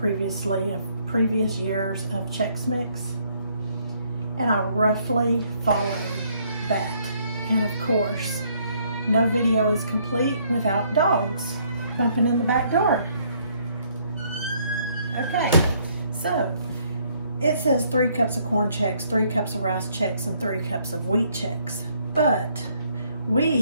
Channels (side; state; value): both; inverted; correlation -0.67